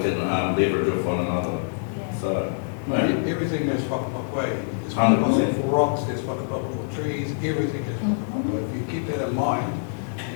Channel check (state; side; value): silent; right; digital silence